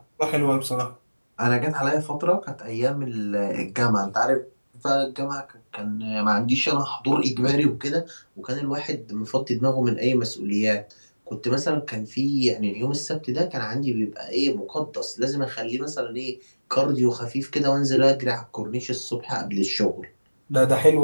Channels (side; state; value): both; inverted; correlation -1.00